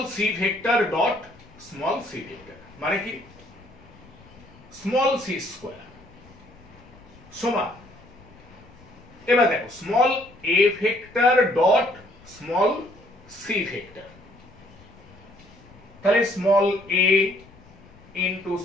C vector dot small C vector মানে কি স্মল সি স্কোয়ার সমান, এবার দেখো small A vector dot small C vector, তাহলে small A into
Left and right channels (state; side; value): noise; left; rumble, 24 dB below the sound